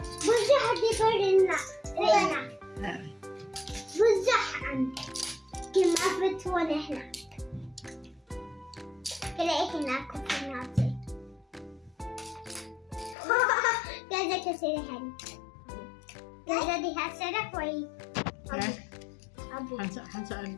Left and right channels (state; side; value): drops out; right; at 13.2 s